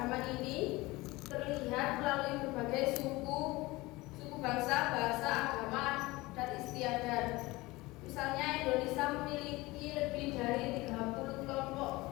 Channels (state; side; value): quieter; right; 21.2 dB